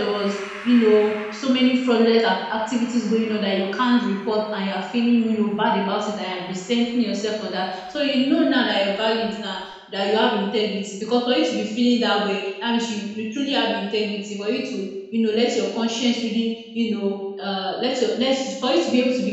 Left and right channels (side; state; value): both; identical; correlation 1.00